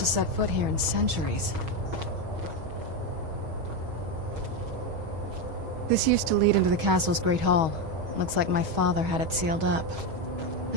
set foot here in centuries. This used to lead into the castle's great hall. Looks like my father had it sealed up. I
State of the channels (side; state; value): left; late; 6.3 ms